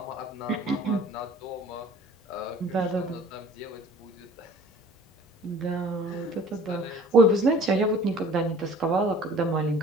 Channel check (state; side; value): normal; both; correlation 0.50